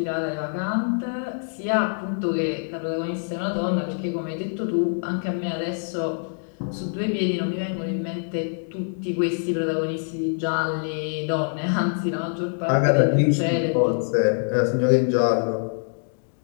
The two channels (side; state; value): right; silent; digital silence